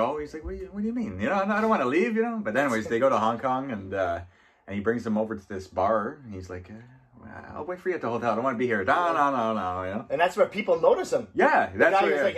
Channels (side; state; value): both; identical; correlation 1.00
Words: He's like, what do you mean? I don't want to leave. But anyways, they go to Hong Kong and he brings them over to this bar. And he's like, I'll wait for you at the hotel. I don't want to be here. No. And that's where people notice him. Yeah, the guy was like,